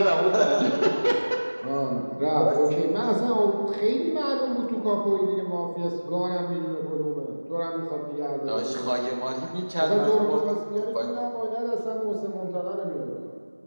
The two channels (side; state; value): both; inverted; correlation -1.00